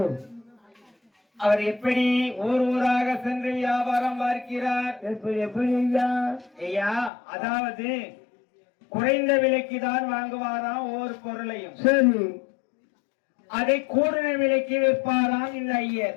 அவர் எப்படி ஊர் ஊராக சென்று வியாபாரம் பார்க்கிறார். எப்படி ஐயா? அதாவது குறைந்த விலைக்கு தான் வாங்குவாராம் ஒவ்வொரு பொருளையும், அதை கூடுதல் விலைக்கு விற்பாராம் இந்த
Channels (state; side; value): drops out; right; at 7.1 s